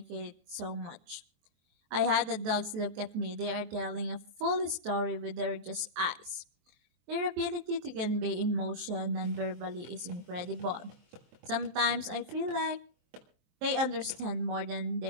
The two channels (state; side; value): late; left; 23 ms